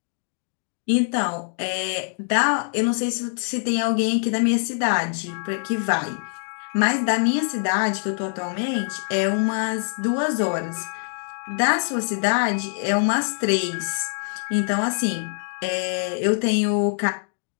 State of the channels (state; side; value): silent; right; digital silence